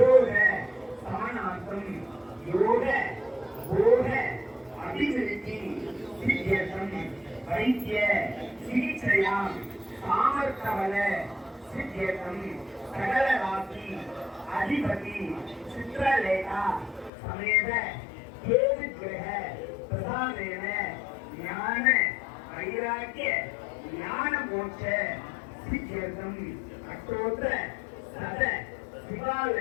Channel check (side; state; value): right; drops out; at 17.1 s